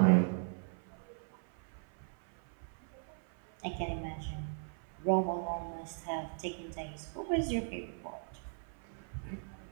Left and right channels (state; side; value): silent; left; 53 dB below the other